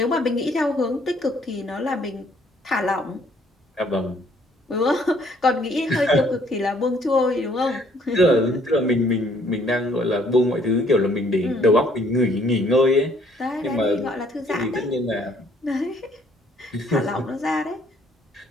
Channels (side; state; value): both; normal; correlation 0.63